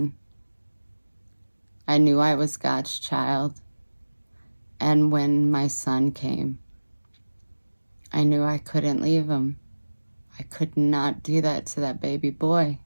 I knew I was God's child. And when my son came, I knew I couldn't leave him. I could not do that to that baby boy.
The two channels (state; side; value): inverted; both; correlation -1.00